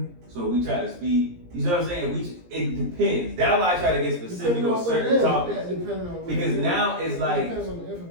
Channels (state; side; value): late; left; 17 ms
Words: So we try to speed. You know what I'm saying? It depends. That's why I try to get specific on certain topics. Because now it's like it depends on the